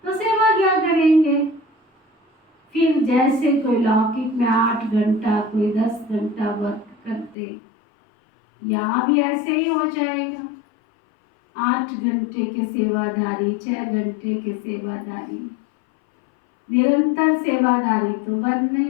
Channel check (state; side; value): drops out; right; at 7.4 s